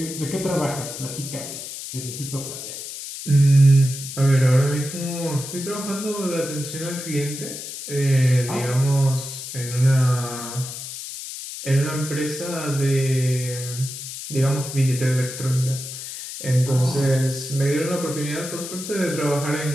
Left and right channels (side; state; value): left; noise; hiss, 9 dB below the sound